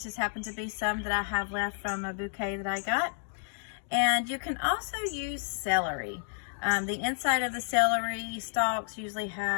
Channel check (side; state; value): right; silent; digital silence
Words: just happen to be some that I have left from a bouquet that I got. And you can also use celery. The inside of the celery stalks usually